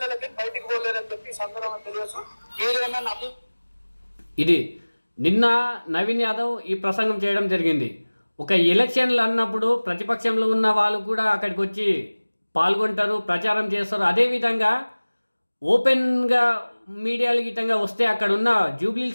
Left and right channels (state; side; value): inverted; both; correlation -1.00